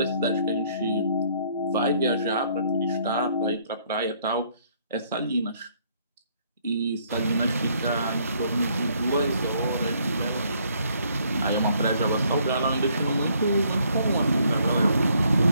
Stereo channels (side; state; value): both; inverted; correlation -0.67